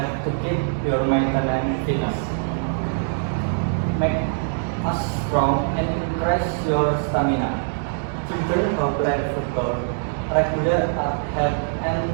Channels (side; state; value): left; silent; digital silence